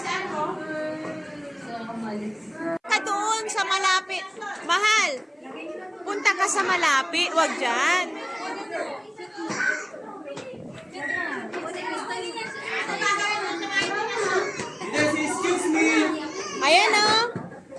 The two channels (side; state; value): both; identical; correlation 1.00